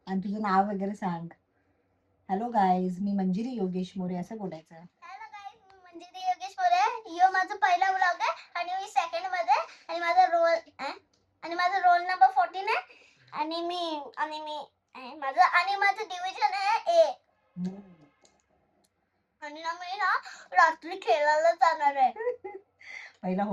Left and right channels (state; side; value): identical; both; correlation 1.00